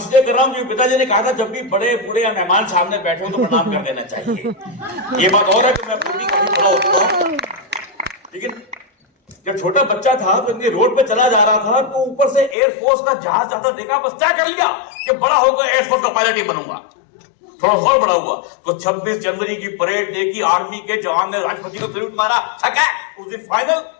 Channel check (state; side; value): drops out; right; at 12.6 s